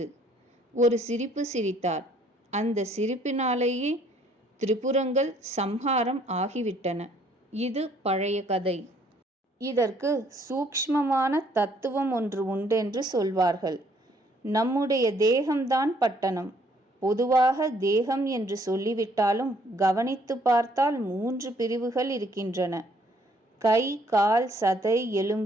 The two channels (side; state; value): both; normal; correlation 0.64